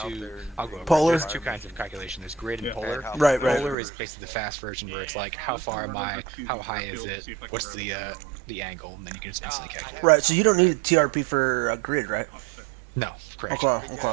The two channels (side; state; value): left; drops out; at 3.8 s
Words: to Polar. There's two kinds of calculation. There's grid and polar. Right. Polar is basically the fast version where it's like, how far am I, how high is it, what's the angle, and then you can just instantly calculate. Right, so you don't need a TRP for a grid, right? No, correct.